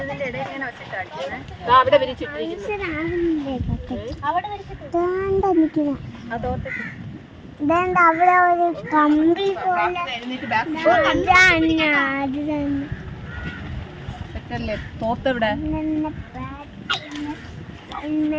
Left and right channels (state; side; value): identical; both; correlation 1.00